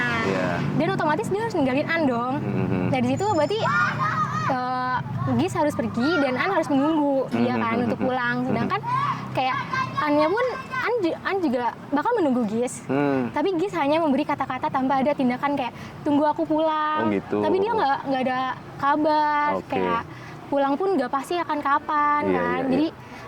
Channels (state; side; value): identical; both; correlation 1.00